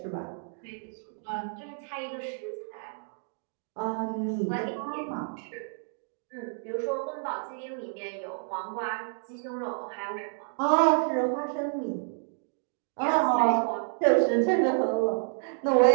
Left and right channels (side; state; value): left; silent; 58 dB below the other